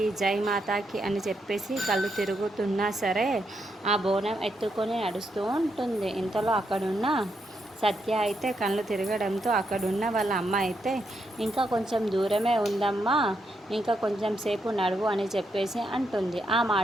జై మాతాకి అని చెప్పేసి కళ్ళు తిరుగుతున్నా సరే ఆ బోనం ఎత్తుకొని నడుస్తూ ఉంటుంది. ఇంతలో అక్కడున్న సత్య అయితే కళ్ళు తిరగడంతో అక్కడున్న వాళ్ళ అమ్మ అయితే ఇంకా కొంచెం దూరమే ఉందమ్మా, ఇంకా కొంచెం సేపు నడువు అని చెప్పేసి అంటుంది. ఆ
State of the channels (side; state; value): both; normal; correlation 0.80